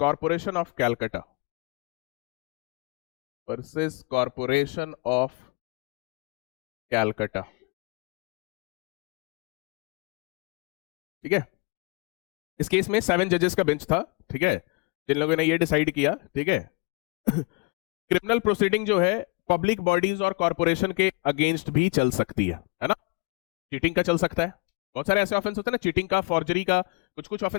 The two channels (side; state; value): right; quieter; 30.3 dB